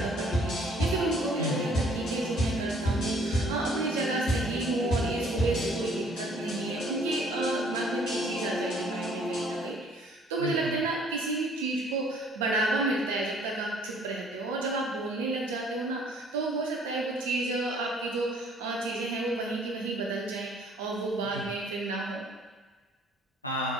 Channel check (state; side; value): normal; both; correlation 0.58